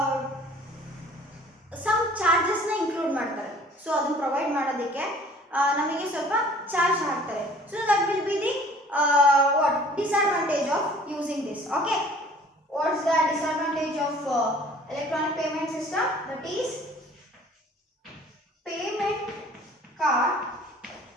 ಸಮ್ ಚಾರ್ಜಸ್ನ ಇನ್ಕ್ಲೂಡ್ ಮಾಡ್ತಾರೆ. ಸೊ ಅದನ್ನು ಪ್ರೊವೈಡ್ ಮಾಡೋದಕ್ಕೆ ನಮಗೆ ಸ್ವಲ್ಪ ಚಾರ್ಜ್ ಹಾಕ್ತಾರೆ. So that will be the what disadvantage of using this. Okay, what's the disadvantage of electronic payment system? That is payment card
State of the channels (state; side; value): normal; both; correlation 0.51